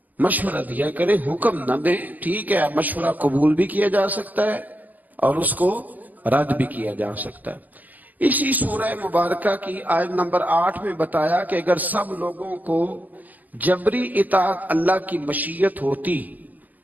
مشورہ دیا کریں، حکم نہ دیں۔ ٹھیک ہے، مشورہ قبول بھی کیا جا سکتا ہے اور اس کو رد بھی کیا جا سکتا ہے۔ اسی سورہ مبارکہ کی آیت نمبر 8 میں بتایا کہ اگر سب لوگوں کو جبری اطاعت اللہ کی مشیت ہوتی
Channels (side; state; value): left; late; 0.081 ms